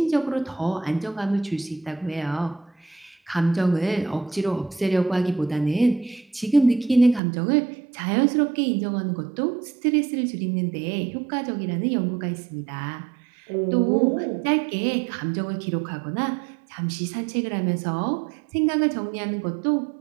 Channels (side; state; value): left; drops out; at 7.2 s